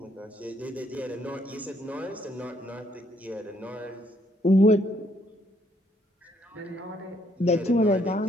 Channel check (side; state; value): both; normal; correlation 0.69